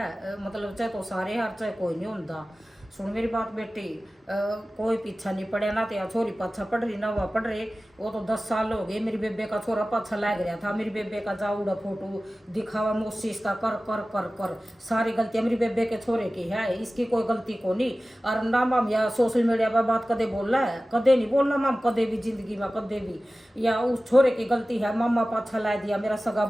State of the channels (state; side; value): normal; both; correlation 0.96